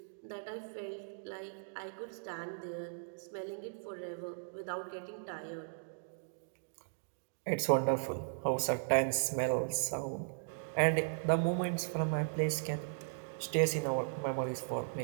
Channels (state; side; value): silent; left; digital silence